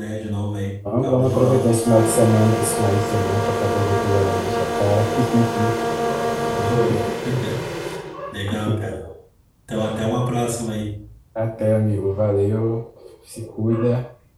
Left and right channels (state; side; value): identical; both; correlation 1.00